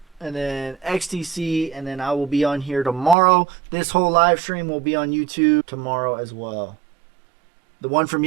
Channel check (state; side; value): drops out; left; at 3.2 s